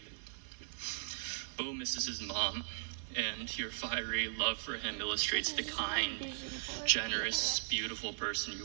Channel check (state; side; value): silent; left; 52 dB below the other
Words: Bo misses his mom, and your fiery love for him illustrates the This is my kind, vision board. generous, beautiful person